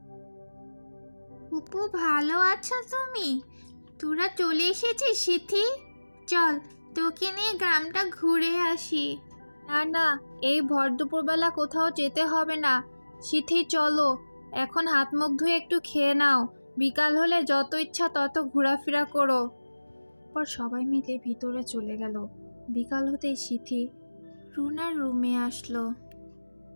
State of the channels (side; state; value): both; inverted; correlation -1.00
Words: ফুপু ভালো আছো তুমি? তোরা চলে এসেছিস সিথি? চল, তোকে নিয়ে গ্রামটা ঘুরে আসি। না না, এই ভর দুপুরবেলা কোথাও যেতে হবে না। সিথি চলো, এখন হাত মুখ ধুয়ে একটু খেয়ে নাও। বিকাল হলে যত ইচ্ছা তত ঘোরাফেরা করো। পর সবাই মিলে ভিতরে চলে গেল। বিকাল হতেই সিথি রুনার রুমে আসলো।